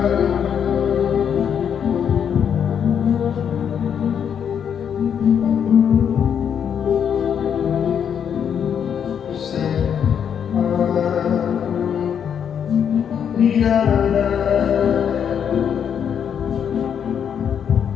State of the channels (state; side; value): quieter; right; 8.1 dB